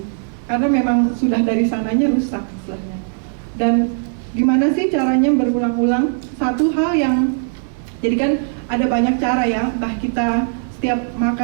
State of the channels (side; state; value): left; silent; digital silence